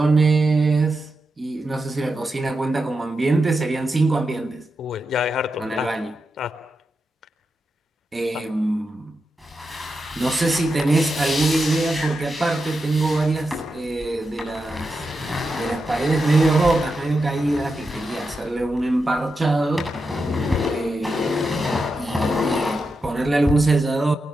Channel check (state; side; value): normal; both; correlation 0.88